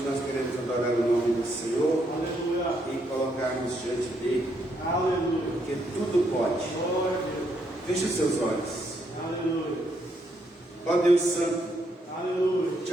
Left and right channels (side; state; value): both; normal; correlation 0.75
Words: nós queremos adorar o nome do Senhor e colocarmos diante dele, porque tudo pode. Feche os seus olhos. Ó Deus Santo,